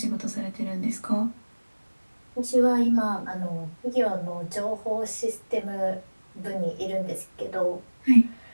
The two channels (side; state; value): both; inverted; correlation -1.00